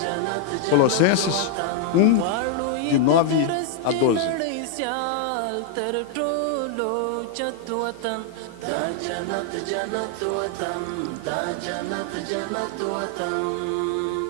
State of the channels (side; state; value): both; different; correlation 0.00